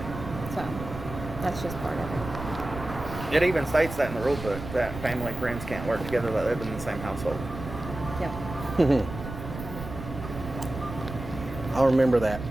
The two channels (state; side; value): noise; right; rumble, 10 dB below the sound